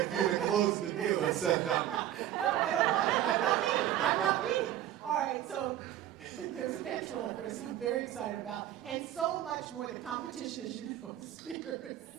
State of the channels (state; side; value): quieter; left; 12.2 dB